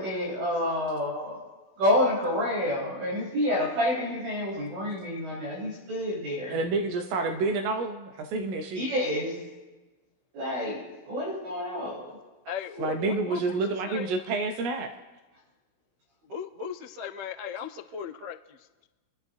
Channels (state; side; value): late; left; 16 ms